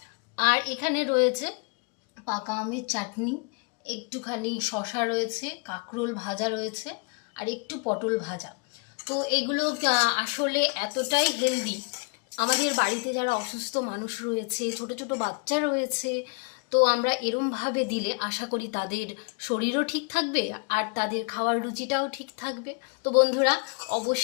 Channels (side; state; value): right; quieter; 33.3 dB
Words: আর এখানে রয়েছে পাকা আমের চাটনি, একটুখানি শসা রয়েছে, কাঁকরোল ভাজা রয়েছে, আর একটু পটল ভাজা। তো এগুলো আসলে এতটাই হেলদি। আমাদের বাড়িতে যারা অসুস্থ মানুষ রয়েছে, ছোট ছোট বাচ্চা রয়েছে, তো আমরা এরমভাবে দিলে আশা করি তাদের শরীরও ঠিক থাকবে আর তাদের খাওয়ার রুচিটাও ঠিক থাকবে। তো বন্ধুরা